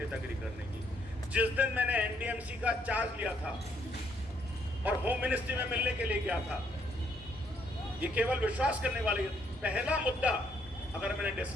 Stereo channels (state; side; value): normal; both; correlation 0.70